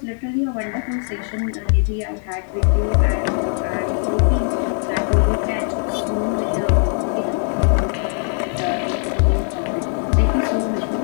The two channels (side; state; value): right; silent; 61 dB below the other